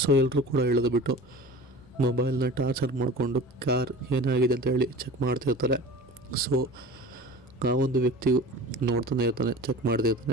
ಸೊ ಎಲ್ಲರೂ ಕೂಡ ಇಳಿದುಬಿಟ್ಟು ಮೊಬೈಲ್ನ ಟಾರ್ಚರ್ ಮಾಡಿಕೊಂಡು ಕಾರ್ ಏನಾಗಿದೆ ಅಂತ ಹೇಳಿ ಚೆಕ್ ಮಾಡ್ತಿರ್ತಾರೆ. ಸೊ ಆ ಒಂದು ವ್ಯಕ್ತಿಯು ನೋಡ್ತಾನೆ ಇರ್ತಾನೆ, ಚೆಕ್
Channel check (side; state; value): both; normal; correlation 0.37